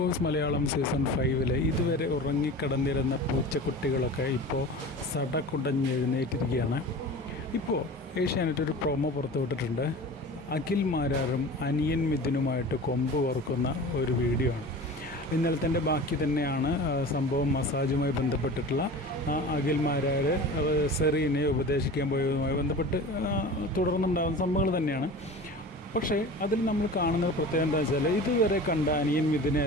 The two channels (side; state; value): both; normal; correlation 0.36